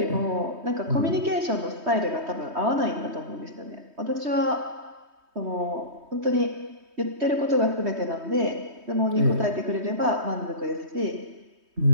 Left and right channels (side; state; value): left; late; 3.2 ms